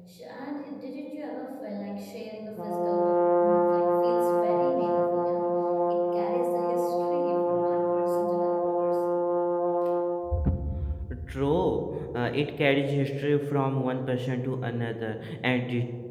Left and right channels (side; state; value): both; identical; correlation 1.00